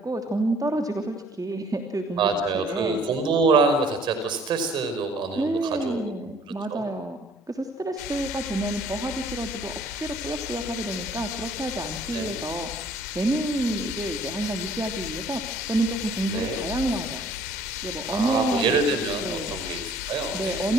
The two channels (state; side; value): normal; both; correlation 0.56